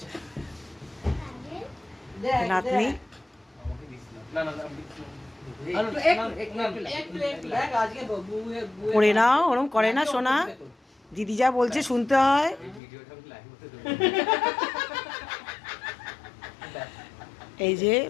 নাতনি পড়ে নাও, ওরম করে না সোনা, দিদি যা বলছে শুনতে হয়। এই যে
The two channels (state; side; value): drops out; right; at 12.8 s